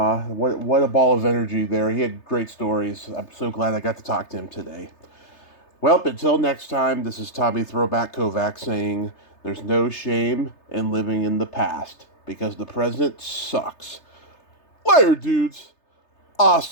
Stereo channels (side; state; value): right; late; 3.3 ms